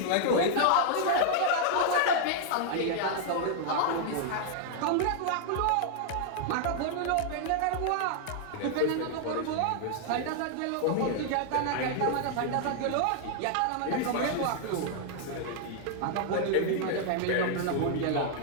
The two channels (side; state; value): both; different; correlation -0.01